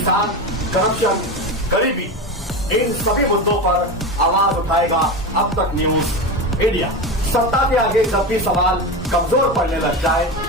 करप्शन, गरीबी, इन सभी मुद्दों पर आवाज उठाएगा अब तक न्यूज इंडिया। सत्ता के आगे जब भी सवाल कमजोर पड़ने लग जाए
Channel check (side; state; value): both; normal; correlation 0.22